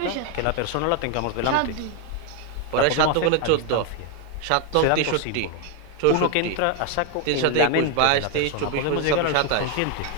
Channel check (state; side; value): different; both; correlation 0.01